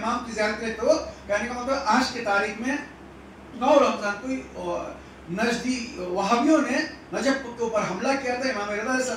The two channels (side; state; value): both; identical; correlation 1.00